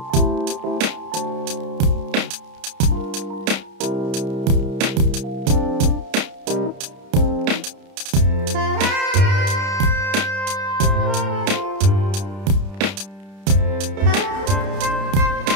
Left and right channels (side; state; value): left; late; 31 ms